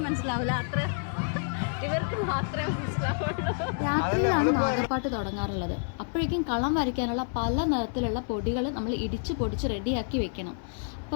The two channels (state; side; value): silent; right; digital silence